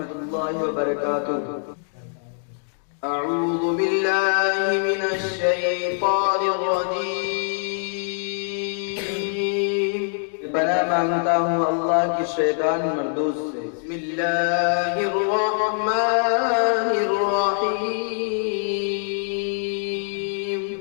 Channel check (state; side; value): silent; right; digital silence